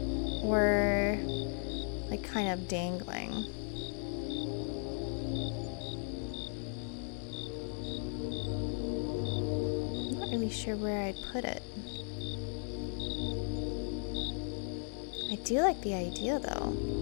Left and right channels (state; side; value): silent; right; 54 dB below the other